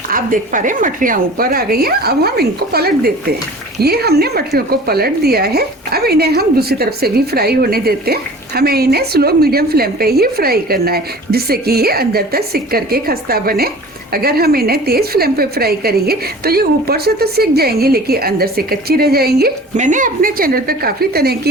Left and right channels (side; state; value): both; normal; correlation 0.43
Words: आप देख पा रहे हैं मठरियाँ ऊपर आ गई हैं। अब हम इनको पलट देते हैं। ये हमने मठरियों को पलट दिया है। अब इन्हें हम दूसरी तरफ से भी फ्राई होने देते हैं। हमें इन्हें स्लो मीडियम फ्लेम पे ही फ्राई करना है, जिससे कि ये अंदर तक सिक करके खस्ता बने। अगर हम इन्हें तेज फ्लेम पे फ्राई करेंगे तो ये ऊपर से तो सिक जाएंगी लेकिन अंदर से कच्ची रह जाएंगी। मैंने अपने चैनल पे काफ़ी तरह